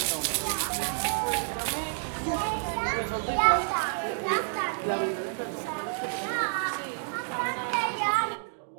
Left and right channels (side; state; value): left; silent; digital silence